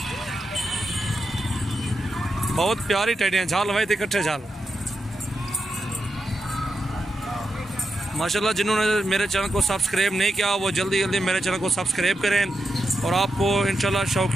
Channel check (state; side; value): normal; both; correlation 0.87